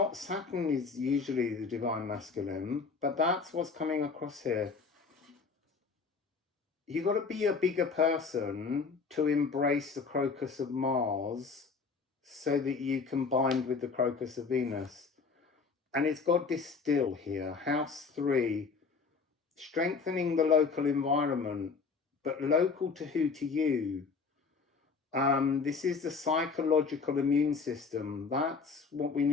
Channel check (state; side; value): quieter; right; 4.9 dB